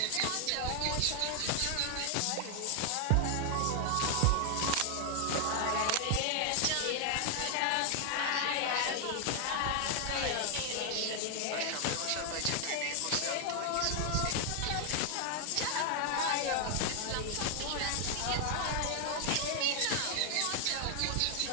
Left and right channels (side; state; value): both; different; correlation 0.00